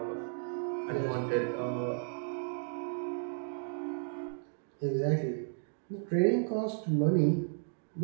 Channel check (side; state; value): left; silent; digital silence